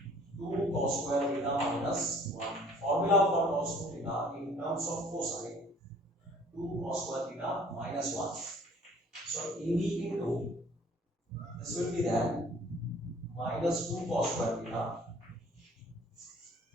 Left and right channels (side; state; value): both; normal; correlation 0.54